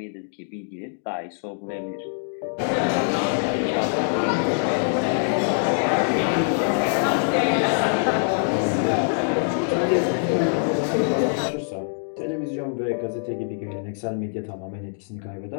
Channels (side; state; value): right; silent; digital silence